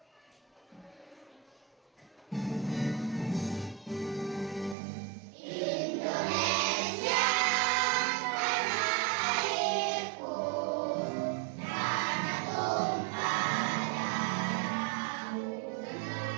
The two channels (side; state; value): left; drops out; at 4.8 s